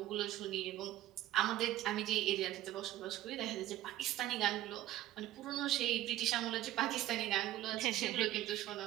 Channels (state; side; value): quieter; left; 14.1 dB